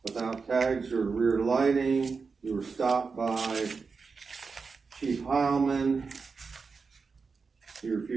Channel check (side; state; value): left; quieter; 4.9 dB